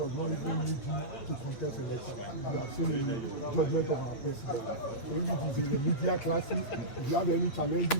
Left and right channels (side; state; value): right; late; 8.2 ms